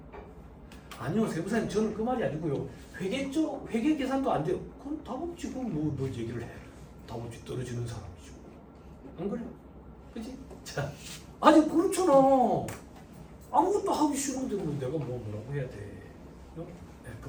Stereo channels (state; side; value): identical; both; correlation 1.00